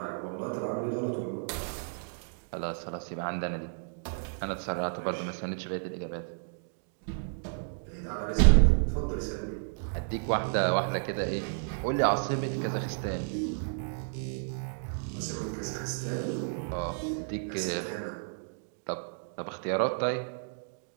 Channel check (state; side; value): silent; left; digital silence